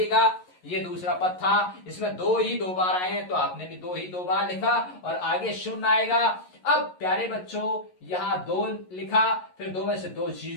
ये दूसरा पद था, इसमें 2 ही 2 बार आए हैं, तो आपने भी 2 ही 2 बार लिखा और आगे शून्य आएगा। अब प्यारे बच्चों यहाँ 2 लिखा, फिर 2 में से 2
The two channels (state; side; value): late; right; 11 ms